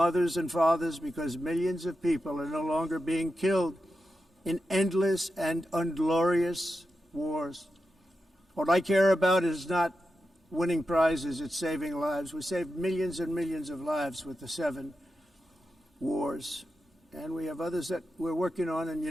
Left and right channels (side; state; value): both; normal; correlation 0.89